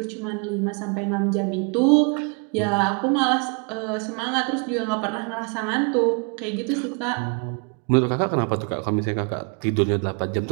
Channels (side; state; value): left; quieter; 36.0 dB